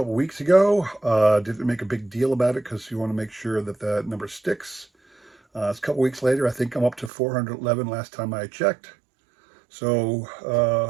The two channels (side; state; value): left; drops out; at 7.1 s